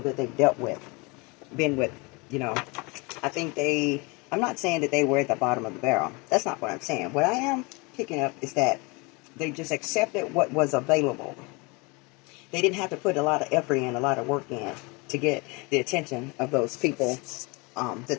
that they've dealt with, been with, you know. I think I'm not saying that they were at the bottom of the barrel. That's not what I'm saying. What I am picking up is that they just accepted what was available. They didn't have to put a lot of effort in, a lot of work in to get the attention of those people that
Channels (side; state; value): right; quieter; 28.0 dB